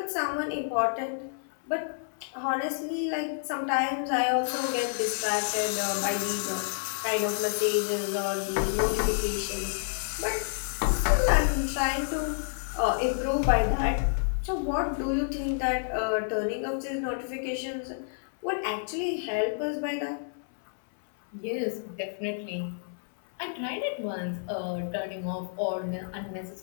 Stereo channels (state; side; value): silent; right; 58 dB below the other